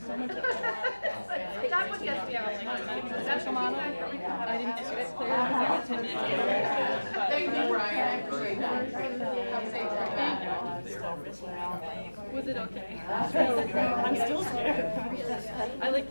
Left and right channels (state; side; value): inverted; both; correlation -1.00